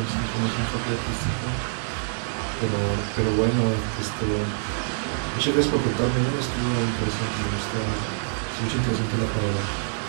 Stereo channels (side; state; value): left; silent; digital silence